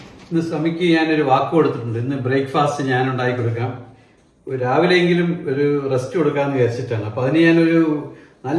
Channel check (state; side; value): identical; both; correlation 1.00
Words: ഇന്ന് സ്വാമിക്ക് ഞാനൊരു വാക്ക് കൊടുത്തിട്ടുണ്ട്. ഇന്ന് ബ്രേക്ക്ഫാസ്റ്റ് ഞാൻ ഉണ്ടാക്കി കൊടുക്കാം, രാവിലെയെങ്കിലും ഒരു റെസ്റ്റ് കൊടുക്കാമെന്ന് വിചാരിച്ചിട്ടാണ്. അപ്പൊ അതിന് ഞാനൊരു